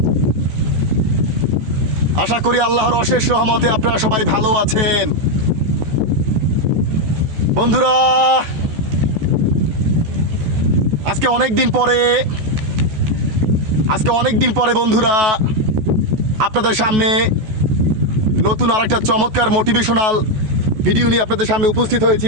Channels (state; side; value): late; left; 14 ms